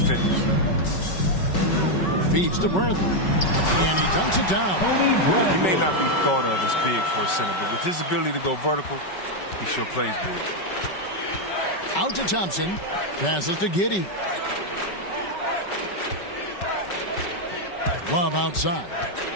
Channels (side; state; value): right; late; 5.3 ms